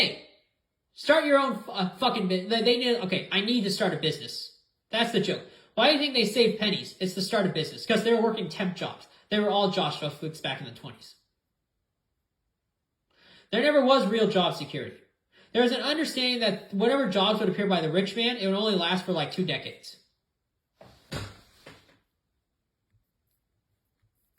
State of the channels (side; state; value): both; identical; correlation 1.00